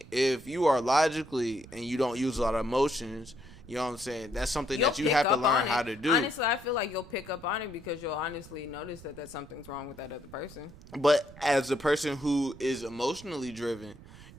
if you are logically and you don't use a lot of emotions, you know what I'm saying? That's something that you have to learn how to do. Honestly, I feel like you'll pick up on it because you'll honestly notice that something's wrong with that other person. But as a person who is emotionally driven,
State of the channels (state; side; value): noise; right; rumble, 19 dB below the sound